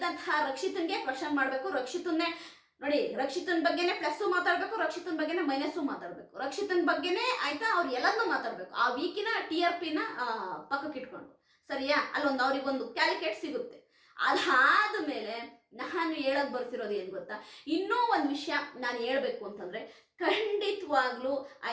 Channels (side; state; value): both; identical; correlation 1.00